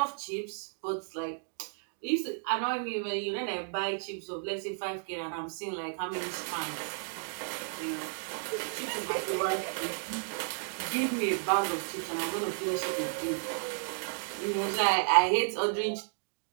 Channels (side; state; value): left; silent; 56 dB below the other